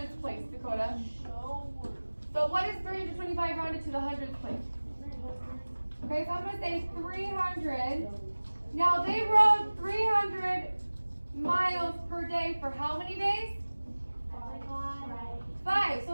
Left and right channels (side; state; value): both; inverted; correlation -1.00